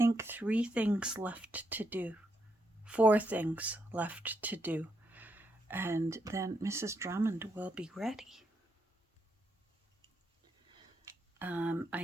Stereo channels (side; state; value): both; normal; correlation 0.79